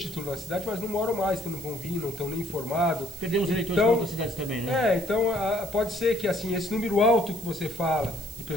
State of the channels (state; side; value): noise; right; hiss, 15 dB below the sound